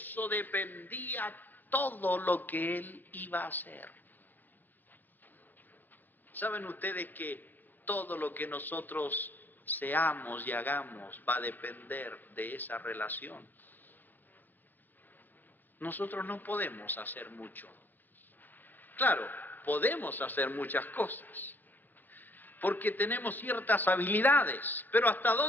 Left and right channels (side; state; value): right; late; 0.087 ms